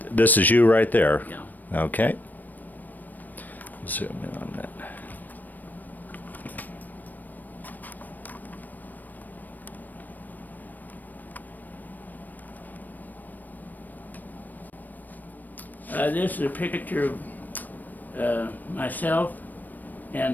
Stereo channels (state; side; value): late; right; 0.086 ms